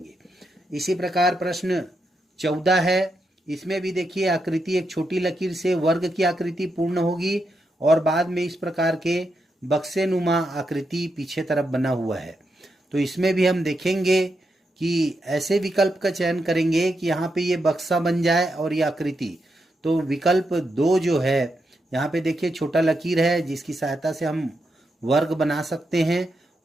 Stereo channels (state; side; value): normal; both; correlation 0.84